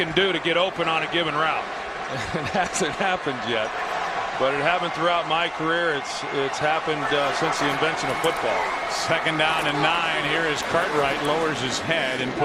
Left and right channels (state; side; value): identical; both; correlation 1.00